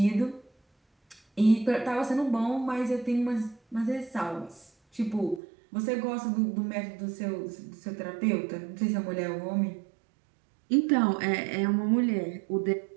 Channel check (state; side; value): drops out; left; at 5.4 s